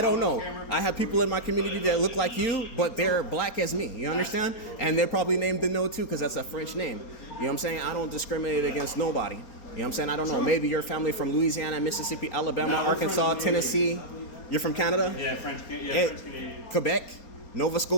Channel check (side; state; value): right; late; 4.3 ms